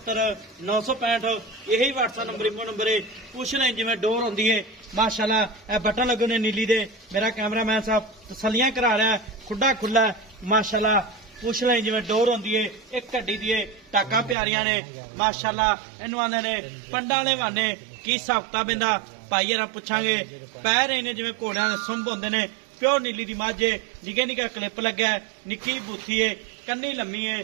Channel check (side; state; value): left; drops out; at 14.4 s